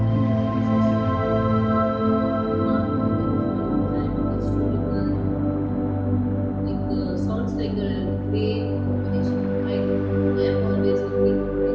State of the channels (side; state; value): both; identical; correlation 1.00